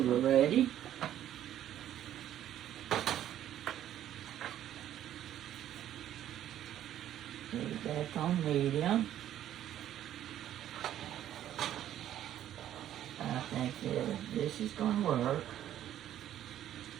ready. Leave that on medium. I think this is going to work.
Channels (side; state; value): left; quieter; 11.6 dB